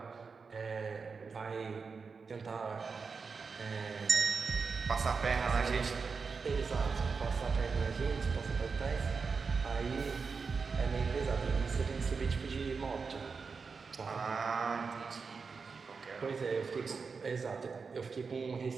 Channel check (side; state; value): left; quieter; 5.0 dB